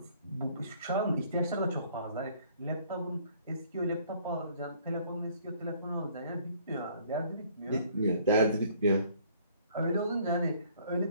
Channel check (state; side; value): inverted; both; correlation -0.59